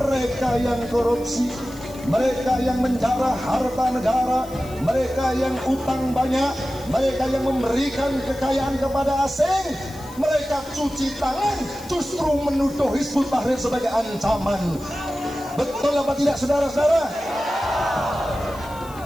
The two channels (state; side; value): noise; left; hiss, 21 dB below the sound